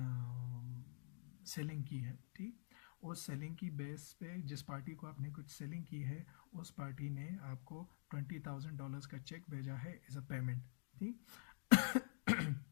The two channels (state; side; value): silent; right; digital silence